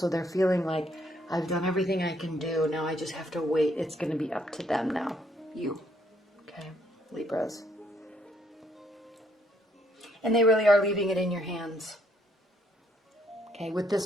they're feeling like, I've done everything I can do. Now I just have to wait. It's going to be up to them now. You, okay, Libras. And they really are leaving it in your hands. Okay, with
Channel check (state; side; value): normal; both; correlation 0.69